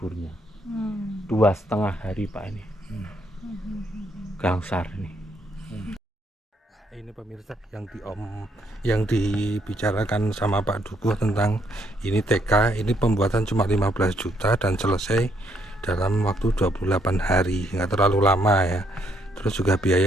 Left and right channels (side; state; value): both; normal; correlation 0.72